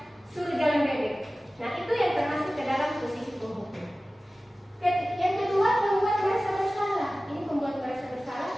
suruh jalan bebek. Nah, itu yang termasuk ke dalam posisi penghukum. Yang kedua, pembuat merasa bersalah. Ini pembuat merasa bersalah,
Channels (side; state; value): both; normal; correlation 0.97